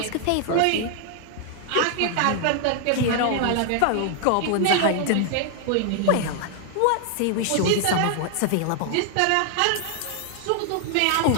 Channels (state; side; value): different; both; correlation 0.00